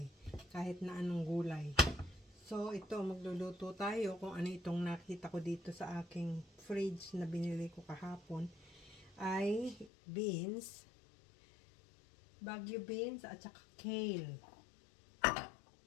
kahit na anong gulay. So, ito, magluluto tayo kung ano itong nakita ko dito sa aking fridge na binili ko kahapon. Ay beans, Baguio beans, at saka kale.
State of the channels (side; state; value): right; drops out; at 9.9 s